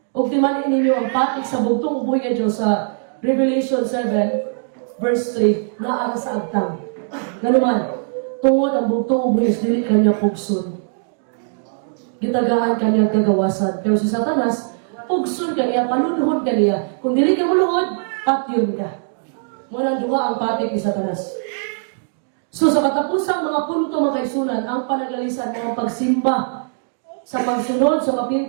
O timanin ninyo ang patik sa bugtong ubuhay nga Diyos sa Revelation 7, verse 3, na ara sa agtang. Ganuman, tungod ang bugtong ubuhay, dili kanya pugson. Gitagaan kanya kagawasan. Pero si Satanas, pugson ka niya, panunuhod ka niya. Kung dili ka muluhod, patyon ka. Muna duha ang patik ni Satanas. So sa katapusang mga punto mga kaisunan, ang panagalisan, mga pagsimba, sa pagsunod, sa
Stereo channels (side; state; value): left; silent; digital silence